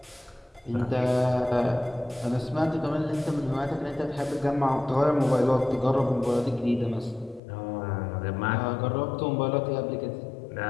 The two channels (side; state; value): right; drops out; at 7.4 s